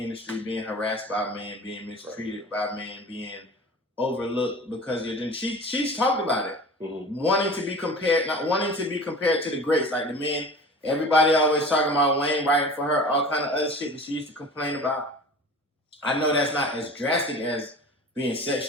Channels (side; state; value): both; normal; correlation 0.39